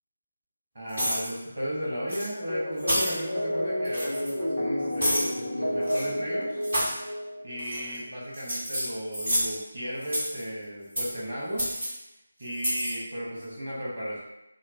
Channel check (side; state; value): both; inverted; correlation -0.92